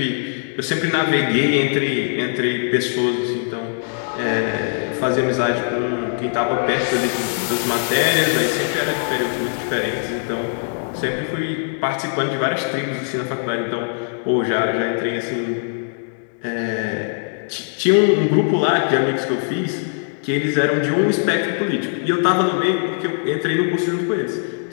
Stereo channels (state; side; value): silent; right; digital silence